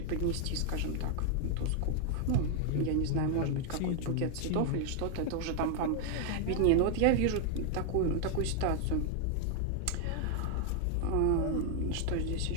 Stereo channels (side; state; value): both; different; correlation 0.00